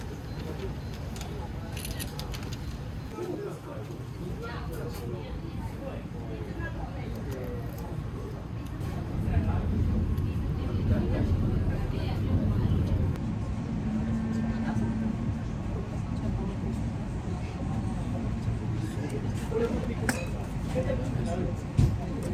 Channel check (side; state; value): both; identical; correlation 1.00